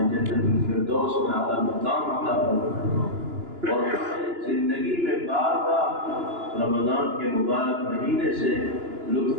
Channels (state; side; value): late; left; 2.9 ms